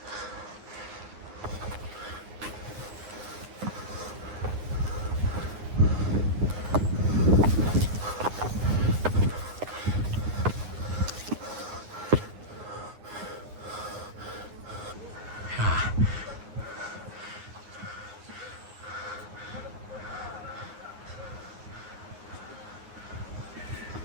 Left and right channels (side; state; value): left; late; 9.6 ms